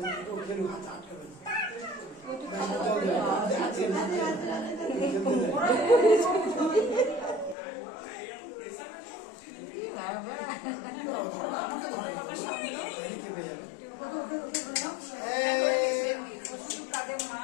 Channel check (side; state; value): right; drops out; at 7.6 s